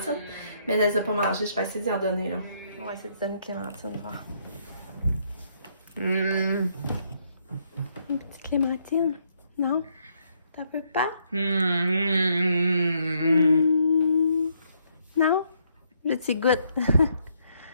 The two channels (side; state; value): both; inverted; correlation -0.72